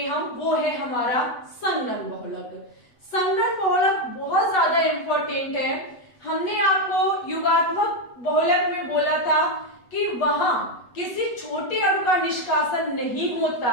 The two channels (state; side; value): late; right; 8.3 ms